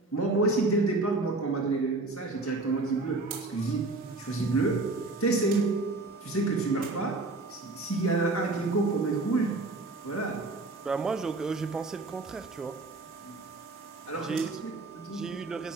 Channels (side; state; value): left; quieter; 3.2 dB